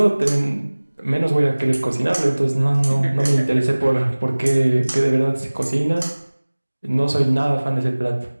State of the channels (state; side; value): inverted; both; correlation -1.00